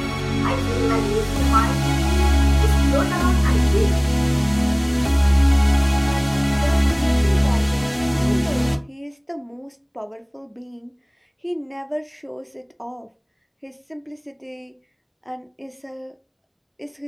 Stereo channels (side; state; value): both; identical; correlation 1.00